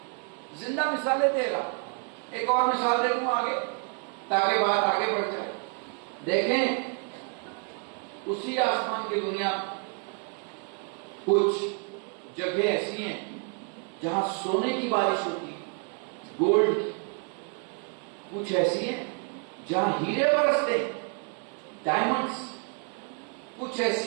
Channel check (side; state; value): left; quieter; 39.0 dB